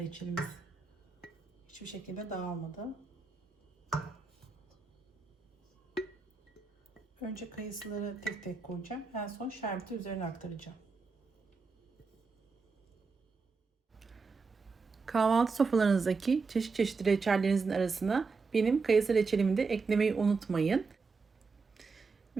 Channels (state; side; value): quieter; left; 4.6 dB